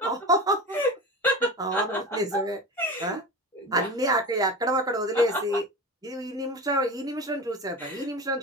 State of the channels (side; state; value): both; normal; correlation 0.29